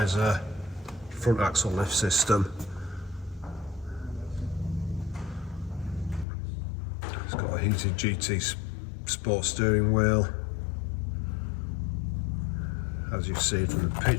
front axle lift system. It's got a heated GT Sport steering wheel. As you've seen from the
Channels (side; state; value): right; drops out; at 6.2 s